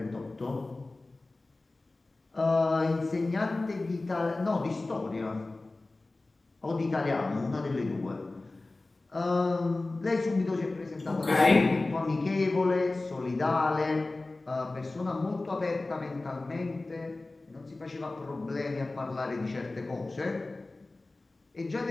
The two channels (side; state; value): right; quieter; 3.1 dB